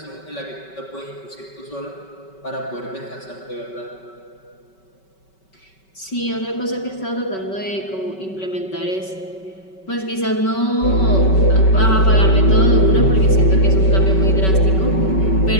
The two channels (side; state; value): right; late; 5.3 ms